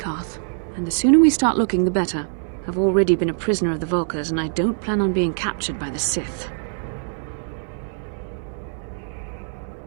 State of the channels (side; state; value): left; silent; digital silence